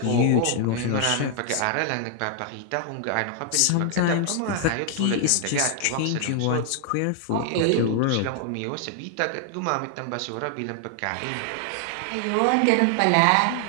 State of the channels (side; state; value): both; different; correlation 0.00